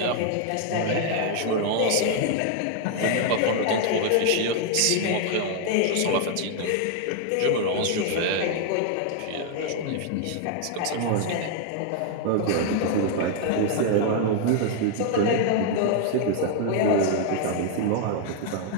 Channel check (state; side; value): different; both; correlation 0.00